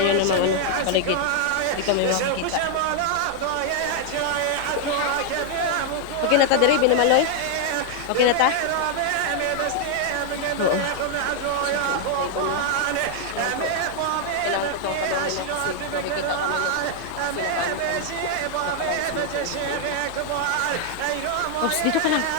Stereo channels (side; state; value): both; different; correlation 0.00